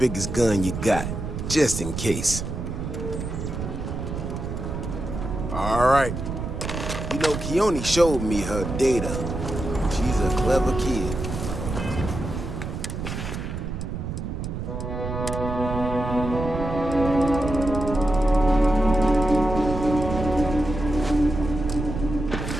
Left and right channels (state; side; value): noise; right; rumble, 5 dB below the sound